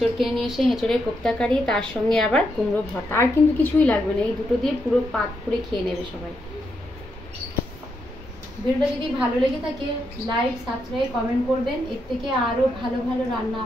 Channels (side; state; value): both; normal; correlation 0.81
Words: কিনে নিয়ে এসে এঁচড়ের কোপ্তা কারি, তার সঙ্গে আবার কুমড়ো ভর্তা, আর কিন্তু কিছুই লাগবে না, এই দুটো দিয়ে পুরো পাত করে খেয়ে নেবে সবাই। ভিডিওটা যদি ভালো লেগে থাকে লাইক, সাবস্ক্রাইব, কমেন্ট করবেন। এর থেকে আরও ভালো ভালো রান্না